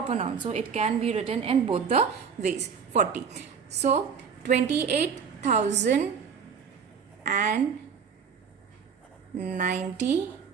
noun. So it can be written in both the ways. 40. So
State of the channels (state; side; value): quieter; left; 6.5 dB